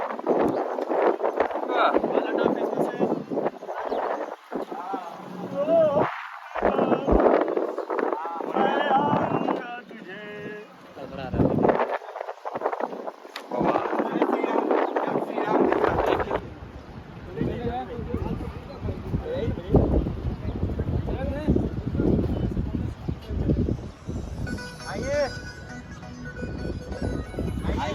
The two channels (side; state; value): both; identical; correlation 1.00